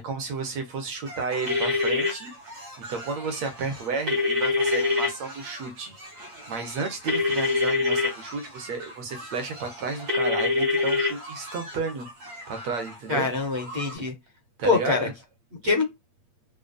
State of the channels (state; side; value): late; left; 8.6 ms